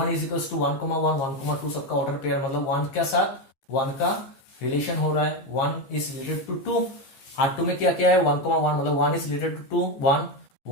is equal to 1, 1, 1, 2 सबका order pair, मतलब 1 के साथ 1 का relation हो रहा है, 1 इज रिलेटेड टू 2। R2 में क्या क्या है, 1, 1, मतलब 1 is related to 2,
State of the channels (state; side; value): late; right; 14 ms